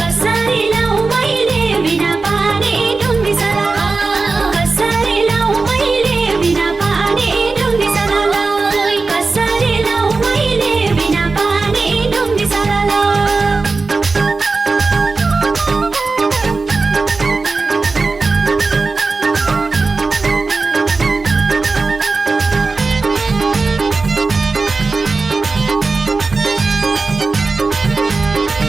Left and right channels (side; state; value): left; quieter; 3.9 dB